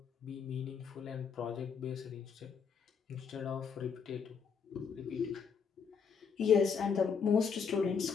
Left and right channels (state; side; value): quieter; right; 6.3 dB